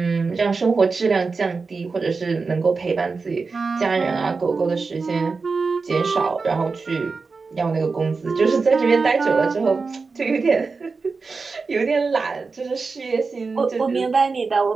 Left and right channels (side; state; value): left; quieter; 4.4 dB